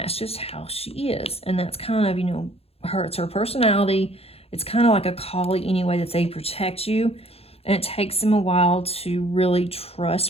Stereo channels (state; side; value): late; right; 0.29 ms